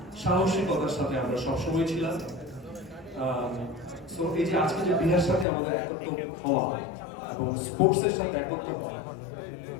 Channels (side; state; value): right; drops out; at 5.5 s